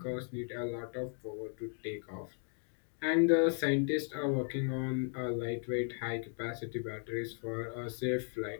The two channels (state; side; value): silent; right; 54 dB below the other